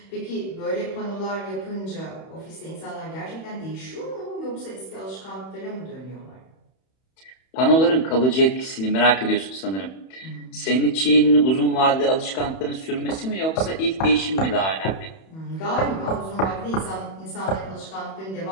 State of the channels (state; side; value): late; right; 31 ms